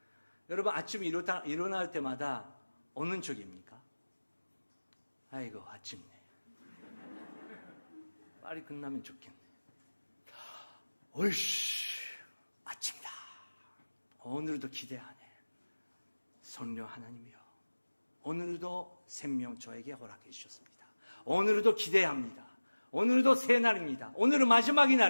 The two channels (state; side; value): inverted; both; correlation -1.00